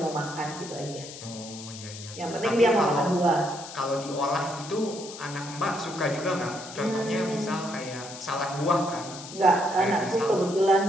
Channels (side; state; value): left; noise; hiss, 13 dB below the sound